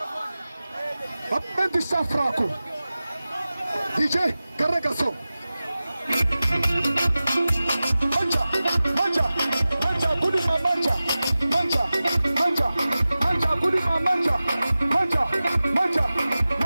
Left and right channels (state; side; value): inverted; both; correlation -0.96